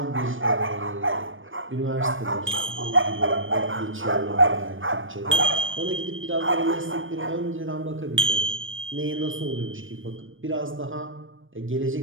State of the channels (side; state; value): left; late; 0.58 ms